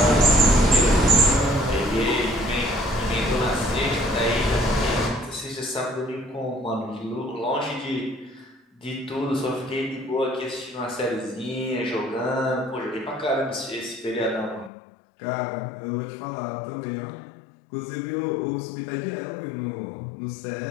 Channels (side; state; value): right; drops out; at 14.7 s